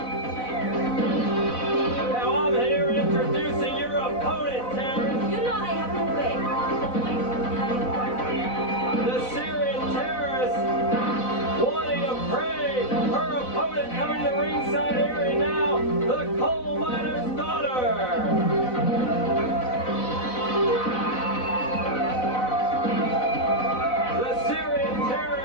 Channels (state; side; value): late; right; 4.0 ms